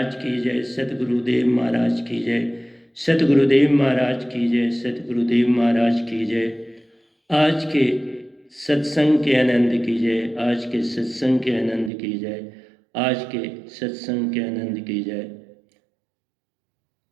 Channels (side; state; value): left; drops out; at 11.9 s